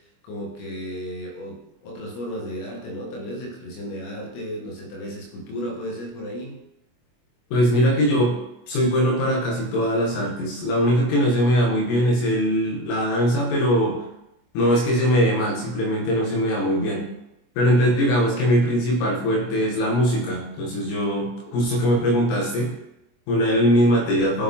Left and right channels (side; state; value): right; late; 25 ms